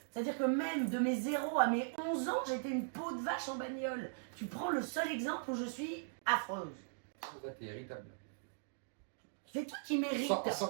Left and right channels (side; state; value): left; silent; digital silence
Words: C'est-à-dire que même de mes 0 à mes 11 ans, j'étais une peau de vache en bagnole. Tu prends le seul exemple où je suis affreuse. Ouais, t'es irritable. C'est toi qui mérites.